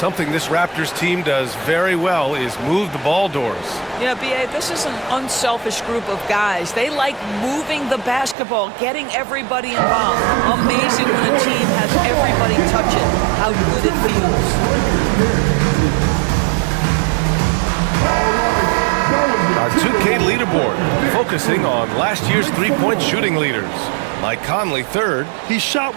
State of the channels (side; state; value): left; drops out; at 8.3 s